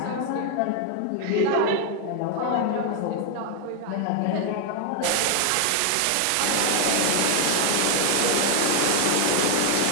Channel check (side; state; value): both; different; correlation 0.00